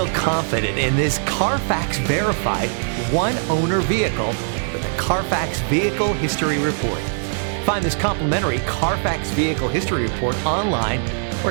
confident in this Carfax verified one-owner vehicle with a Carfax Vehicle History Report. Find this complimentary Carfax Vehicle History Report online or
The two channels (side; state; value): left; silent; 65 dB below the other